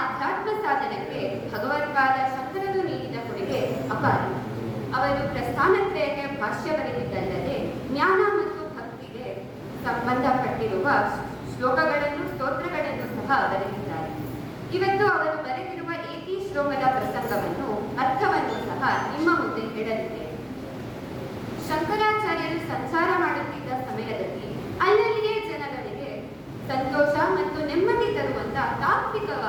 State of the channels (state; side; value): identical; both; correlation 1.00